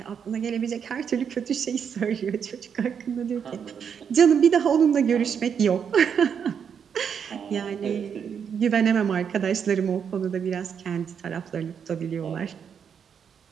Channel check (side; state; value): left; quieter; 7.4 dB